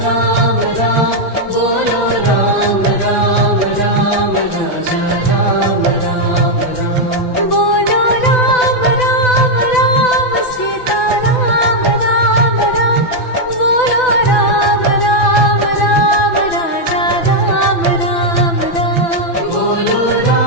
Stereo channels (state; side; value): late; right; 6.0 ms